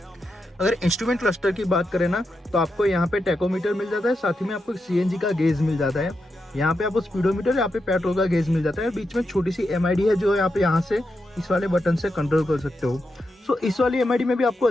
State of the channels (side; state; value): both; normal; correlation 0.86